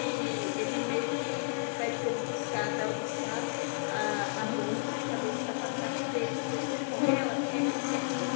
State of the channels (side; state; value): right; silent; digital silence